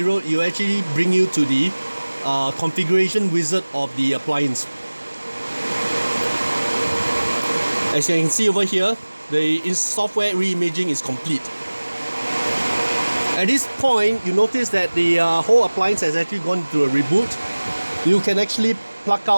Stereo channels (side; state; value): both; inverted; correlation -1.00